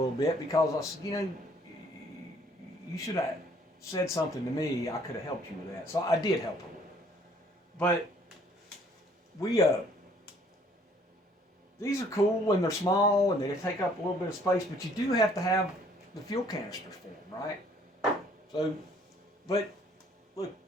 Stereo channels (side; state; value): both; normal; correlation 0.60